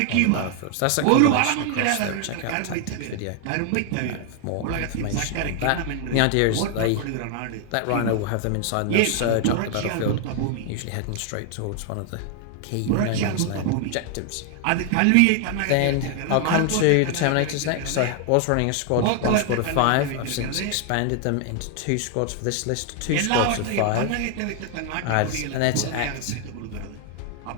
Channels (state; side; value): different; both; correlation 0.00